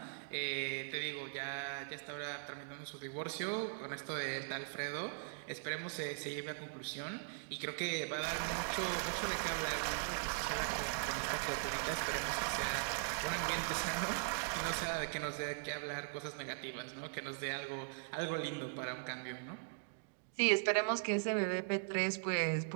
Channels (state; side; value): silent; left; digital silence